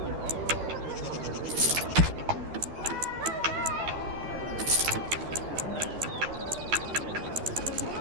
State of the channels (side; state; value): left; late; 12 ms